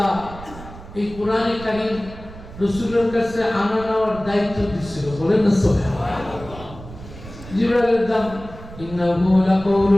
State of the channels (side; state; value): right; noise; rumble, 15 dB below the sound